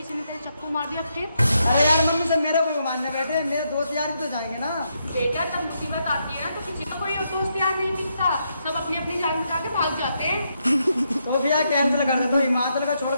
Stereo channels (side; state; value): both; inverted; correlation -0.80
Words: ने तेरे चक्कू मार दिया फिर? अरे यार मम्मी सब मेरा कोई मानने बैठे, मेरे दोस्त यार भी तो जाएंगे ना। बेटा जब मुसीबत आती है ना तो किसी का कोई दोस्त यार नहीं दिखता, सब अपनी अपनी जान बचा के भाग जाते हैं। तो भैया कैंसिल कर दे, तो हिमाचल का छोड़